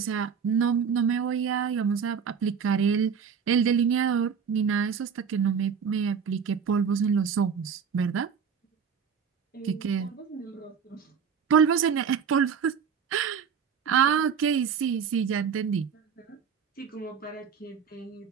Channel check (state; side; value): quieter; left; 6.8 dB